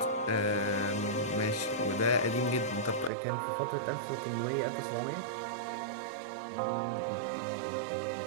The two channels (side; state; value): left; drops out; at 3.1 s